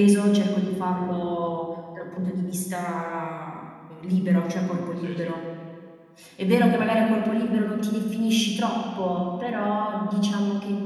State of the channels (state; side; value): identical; both; correlation 1.00